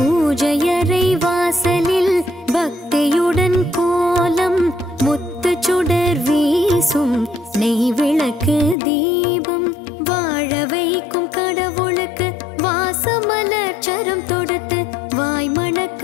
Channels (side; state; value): right; drops out; at 8.8 s